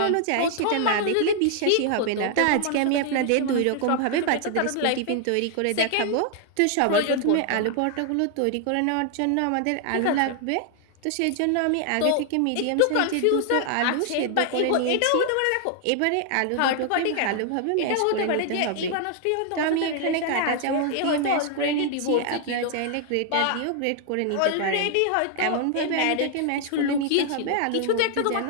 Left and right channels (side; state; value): both; different; correlation 0.00